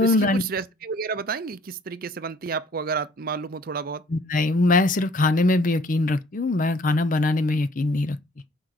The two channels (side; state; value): both; normal; correlation 0.56